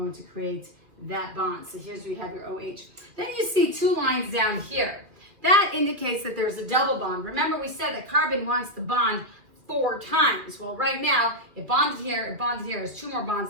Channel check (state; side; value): late; left; 2.3 ms